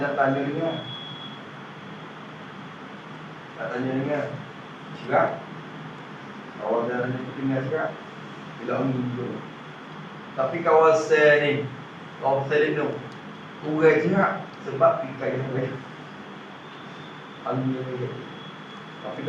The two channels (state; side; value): identical; both; correlation 1.00